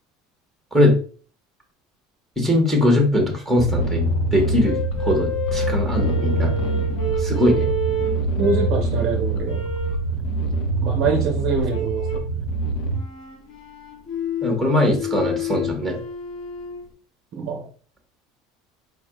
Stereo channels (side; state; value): both; normal; correlation 0.34